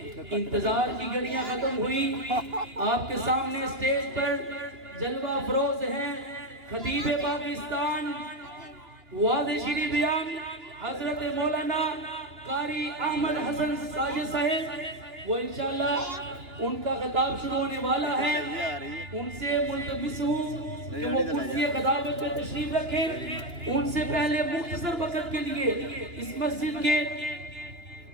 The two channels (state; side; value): late; left; 2.9 ms